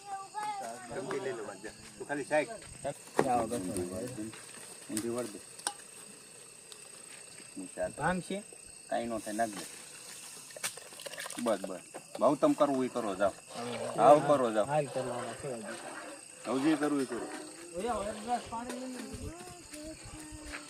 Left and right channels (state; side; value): identical; both; correlation 1.00